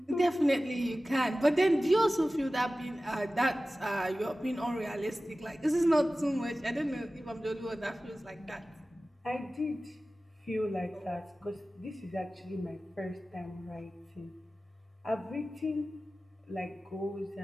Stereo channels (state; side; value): normal; both; correlation 0.96